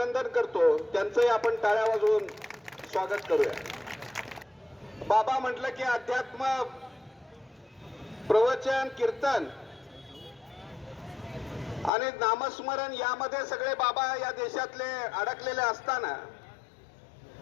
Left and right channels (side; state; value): right; drops out; at 11.9 s